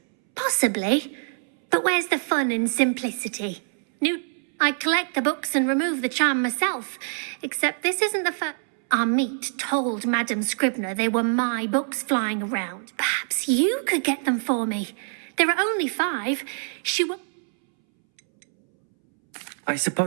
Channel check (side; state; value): left; silent; 62 dB below the other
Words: Possibly. But where's the fun in simplicity? I collect the books and remove the charm myself. Except this isn't the first... Amit told Madame Scribner they were my books flying around. Perhaps you could get them for me. There are only 5. I